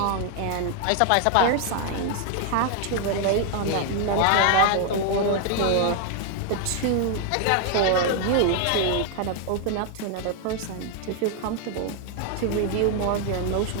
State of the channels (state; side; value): different; both; correlation 0.00